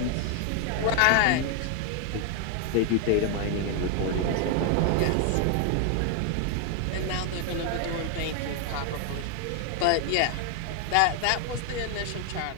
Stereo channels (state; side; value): different; both; correlation 0.00